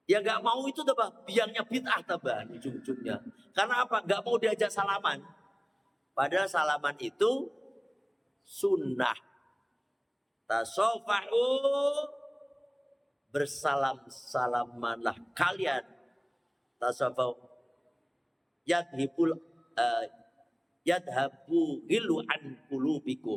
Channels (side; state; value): both; identical; correlation 1.00